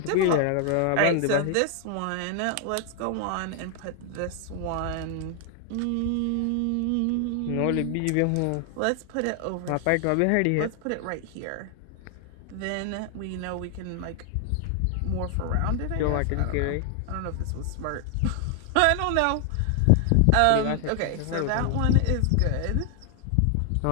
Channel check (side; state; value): both; different; correlation 0.00